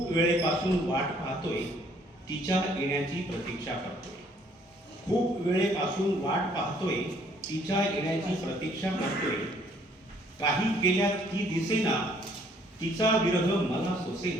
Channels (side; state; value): both; normal; correlation 0.63